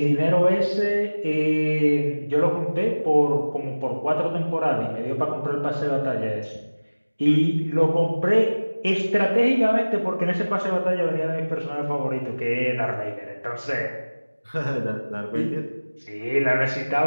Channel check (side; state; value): both; inverted; correlation -1.00